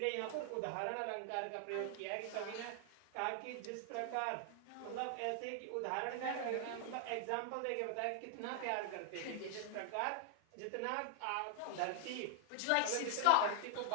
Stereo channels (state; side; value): different; both; correlation 0.00